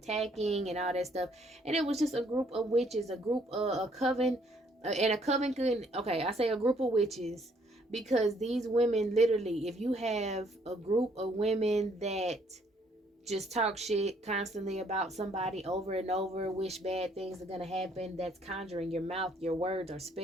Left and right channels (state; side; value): normal; both; correlation 0.66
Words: and all that stuff. And it was just a group of witches, a group a coven, and a coven could okay. I say a group of witches because these women literally, if you have a group of women that just talk shit constantly about somebody over and over, wish bad things are gonna happen, that's conjuring your mouth, your words, or